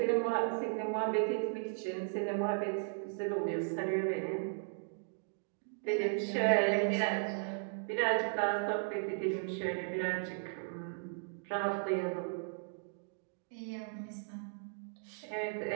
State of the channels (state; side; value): silent; left; digital silence